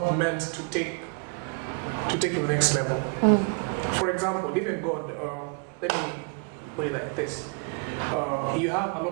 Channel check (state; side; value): quieter; left; 34.5 dB